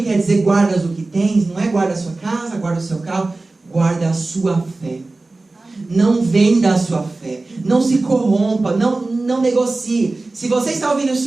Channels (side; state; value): left; quieter; 3.3 dB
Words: quer dizer guardas o que tens? Não é guarda a sua casa, guarda o seu carro, guarda a sua fé. Não venda a sua fé, não se corrompa, não negocie. Se você está ouvindo